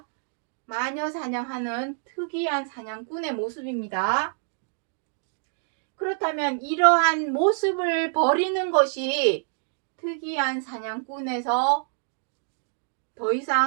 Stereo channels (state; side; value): silent; left; digital silence